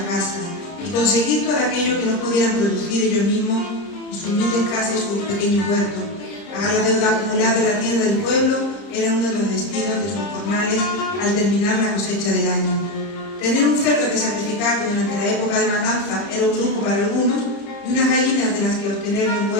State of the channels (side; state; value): right; late; 30 ms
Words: casa y conseguir todo aquello que no pudieran producir ellos mismos en sus humildes casas y sus pequeños huertos. Pagar la deuda acumulada en la tienda del pueblo era uno de los destinos de sus jornales al terminar la cosecha del año. Tener un cerdo que sacrificar durante la época de matanza era un lujo para algunos y unas gallinas de las que obtener los